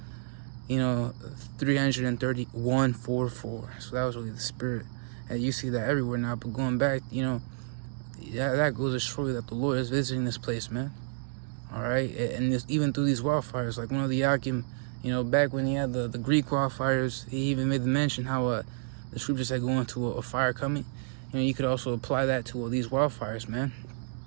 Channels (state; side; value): silent; left; digital silence